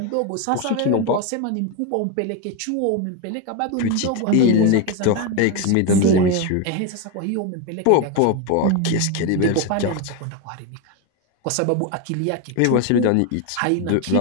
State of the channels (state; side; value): different; both; correlation 0.03